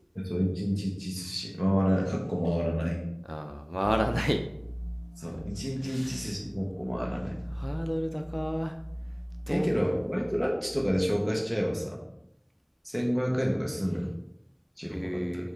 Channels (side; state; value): both; identical; correlation 1.00